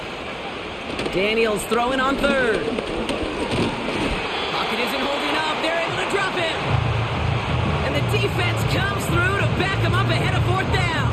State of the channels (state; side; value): identical; both; correlation 1.00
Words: Daniels throwing on 3rd. Pocket isn't holding up. They're able to drop him. And the defense comes through to back him up ahead of 4th down.